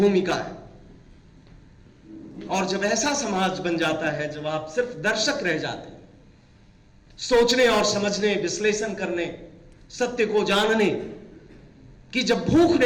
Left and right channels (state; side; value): identical; both; correlation 1.00